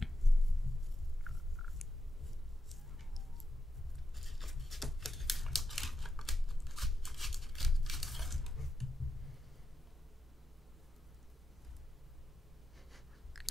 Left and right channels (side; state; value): both; normal; correlation 0.88